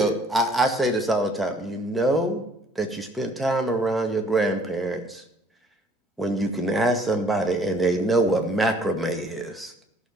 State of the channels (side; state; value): both; normal; correlation 0.58